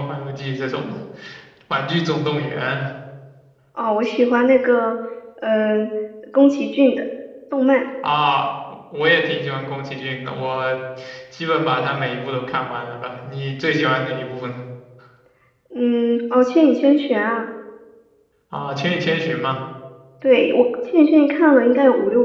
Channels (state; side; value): identical; both; correlation 1.00